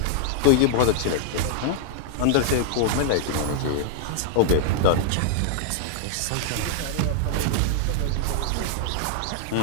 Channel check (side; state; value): both; different; correlation -0.01